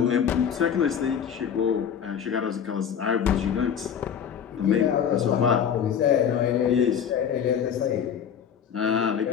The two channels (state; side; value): quieter; right; 8.0 dB